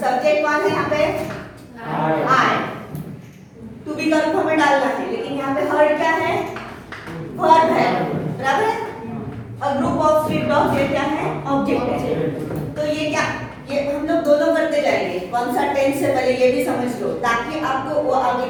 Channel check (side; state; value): both; identical; correlation 1.00